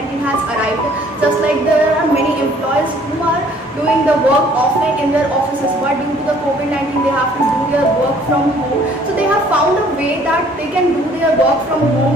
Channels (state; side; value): normal; both; correlation 0.58